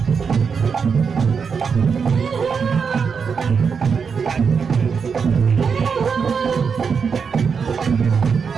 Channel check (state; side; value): quieter; left; 6.0 dB